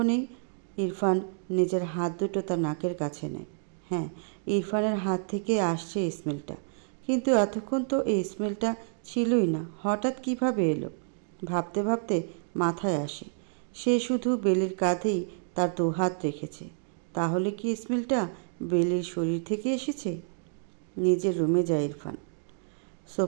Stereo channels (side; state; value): left; silent; digital silence